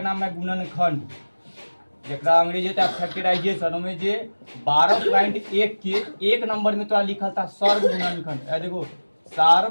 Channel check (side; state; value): both; inverted; correlation -1.00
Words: नाम है गुणनखंड, जरा अंग्रेजी फैक्टराइजेशन में जे 12.1 के 1 नंबर में तो लिखा था सर्व गुणनखंड। देखो